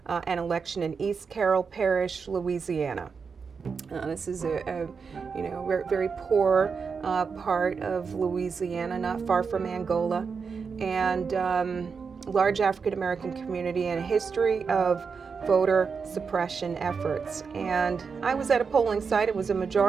an election in East Carroll Parish, Louisiana. This is a very poor part of Louisiana, not far from Angola, and large African American community and a history of voter suppression efforts. And I was at a polling site. It was a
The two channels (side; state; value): left; quieter; 5.5 dB